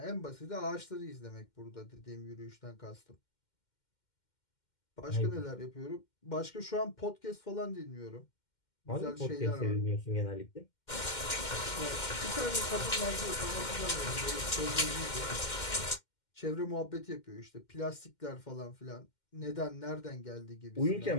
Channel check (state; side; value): late; right; 2.1 ms